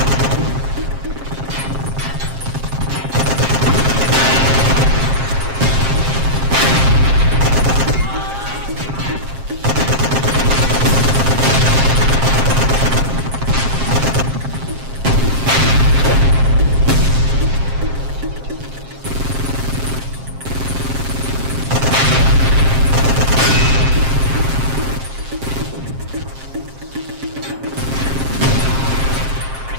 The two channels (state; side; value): late; left; 7.5 ms